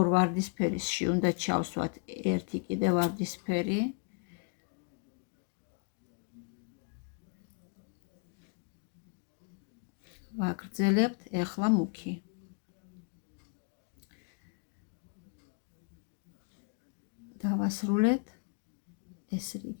ვარდისფერისში უნდა ჩავსვათ ერთი კიდე ვარდისფერი. ვაგრძელებთ ეხლა მუქი. დავასრულეთ. ეს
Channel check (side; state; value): right; quieter; 35.9 dB